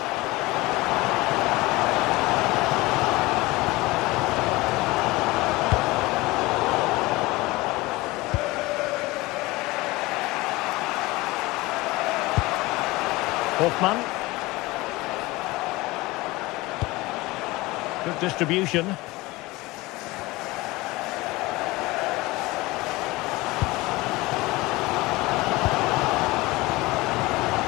Hoffman. Good distribution.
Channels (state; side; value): quieter; right; 21.1 dB